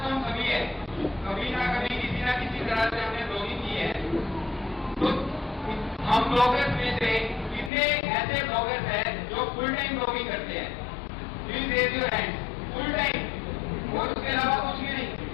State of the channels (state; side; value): drops out; right; at 7.7 s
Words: तो हम सभी है, कभी ना कभी किसी ना किसी तरह से हमने ब्लॉगिंग की है। तो हम ब्लॉगर्स में से कितने ऐसे ब्लॉगर्स हैं जो फुल टाइम ब्लॉगिंग करते हैं? Please raise your hand. Full time और उसके अलावा कुछ भी नहीं।